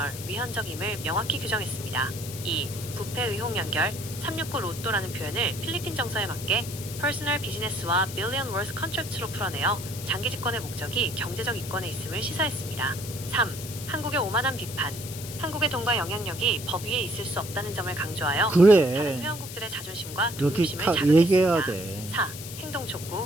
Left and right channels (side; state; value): left; noise; hiss, 11 dB below the sound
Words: 위헌적임을 명확히 규정했습니다. 2. 부패 의혹 연결, 369 로또라는 표현을 필리핀 정서에 맞게 퍼스널 비즈니스와 빌리언 월스 컨트랙트로 풀어내어 장기 집권의 목적이 경제적 이권에 있음을 시사했습니다. 3. 한국의 오만한 비판. 한국의 돈과 영향력이 법 위에 있을 수 없다는 점을 강조하여 다른 그래. 회원국들의 자존심과 이렇게 독립심을 다 얘기해야 자극했습니다. 돼. 4. 행동